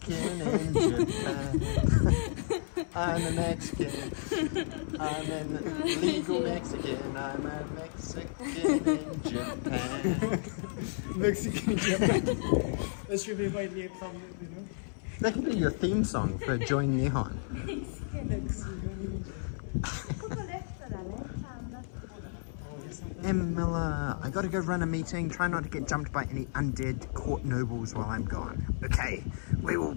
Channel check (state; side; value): silent; right; 56 dB below the other